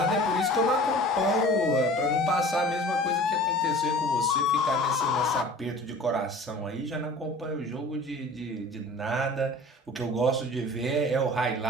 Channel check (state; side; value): normal; both; correlation 0.43